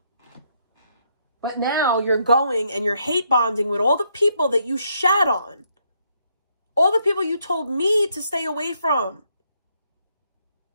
But now you're going and you're hate bonding with all the people that you shat on. All the people you told me to stay away from.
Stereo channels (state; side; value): inverted; both; correlation -0.74